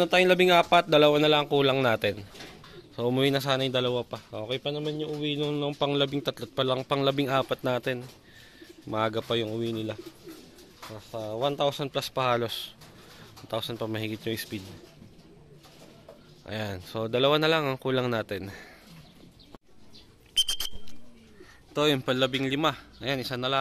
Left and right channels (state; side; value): identical; both; correlation 1.00